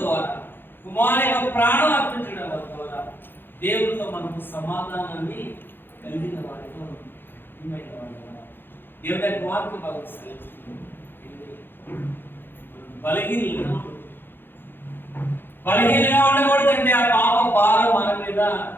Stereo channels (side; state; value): right; late; 0.10 ms